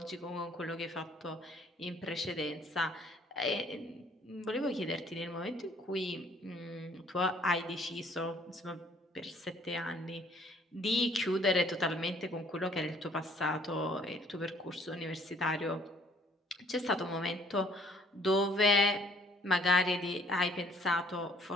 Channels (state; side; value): normal; both; correlation 0.60